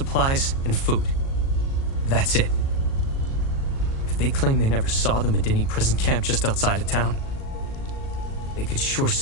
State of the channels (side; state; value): right; late; 37 ms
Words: and food. That's it. If they claim they never saw the Medini prison camp just outside of town, they could sure